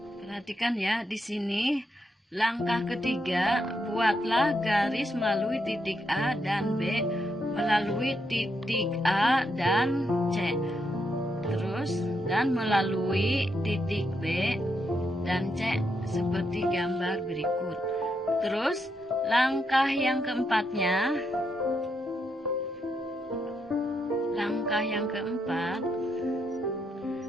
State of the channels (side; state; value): both; normal; correlation 0.80